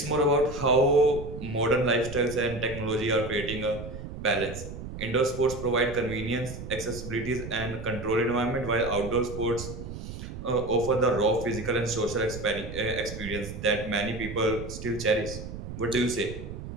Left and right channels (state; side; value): noise; right; rumble, 9 dB below the sound